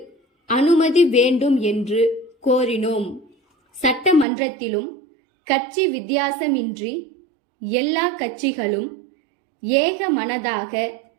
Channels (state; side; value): drops out; left; at 4.2 s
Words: அனுமதி வேண்டும் என்று கோரினோம். சட்டமன்றத்திலும் கட்சி வித்தியாசமின்றி எல்லா கட்சிகளும் ஏக மனதாக